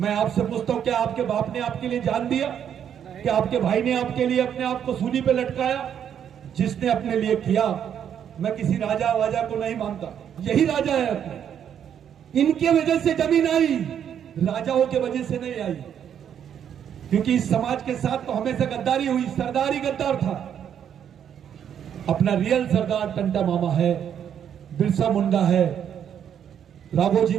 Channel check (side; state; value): left; quieter; 8.9 dB